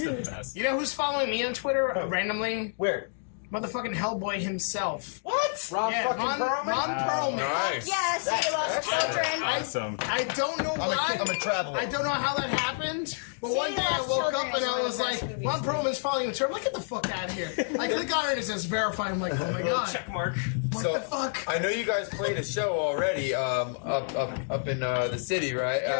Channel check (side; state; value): right; silent; digital silence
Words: the best. You know who's following me on Twitter randomly? Where? Motherfucking Hellboy himself. What? Ron fucking Perlman? Ron Perlman. Nice. Yes, he loves children. Awesome. I don't know why. I'm a traveler. I don't know how that happened. But one day I Lost woke Children up and is I one of was the like, best movies. Ron Perlman's following the term. Like, get the fuck out of here. I click on it and it says verify. I'm like, oh my god. Check mark. What So the fuck? I know you guys played a show already up in the city, right?